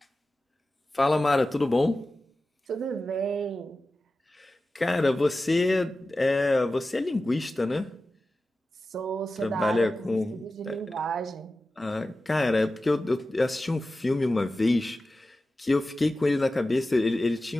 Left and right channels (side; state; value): both; normal; correlation 0.94